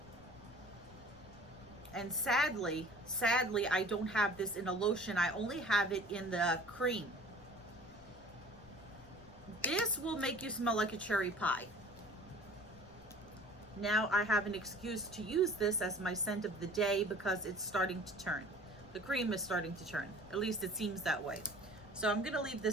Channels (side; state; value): left; noise; rumble, 25 dB below the sound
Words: And sadly, I don't have this in a lotion. I only have it in the cream. This will make you smell like a cherry pie. Now I have an excuse to use this as my scent of the day because it's starting to turn. The cream is starting to turn. At least it seems that way. So I'm gonna leave